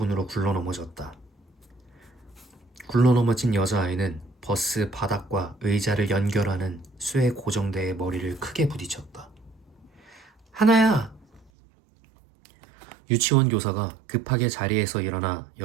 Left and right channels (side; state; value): left; drops out; at 11.5 s